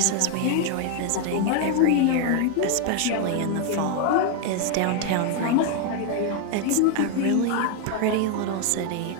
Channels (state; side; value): different; both; correlation 0.01